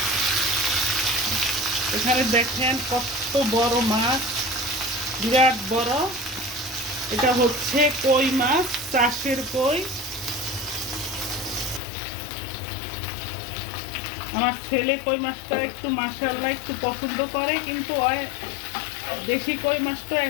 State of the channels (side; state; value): right; drops out; at 11.8 s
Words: এখানে দেখেন কত বড় মাছ, বিরাট বড়। এটা হচ্ছে কই মাছ, চাষের কই। আমার ছেলে কই মাছটা একটু মাশাআল্লাহ একটু পছন্দ করে, কিন্তু দেশি কই মাছটা